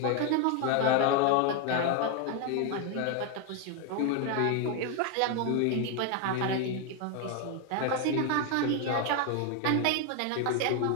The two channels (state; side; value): different; both; correlation 0.01